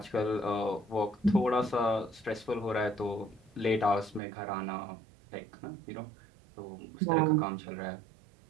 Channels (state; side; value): drops out; left; at 4.2 s